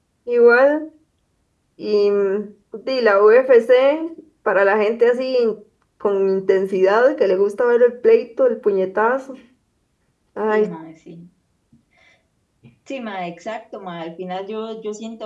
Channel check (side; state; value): both; identical; correlation 1.00